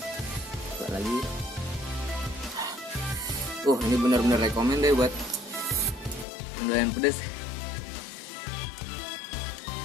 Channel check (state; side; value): drops out; right; at 6.2 s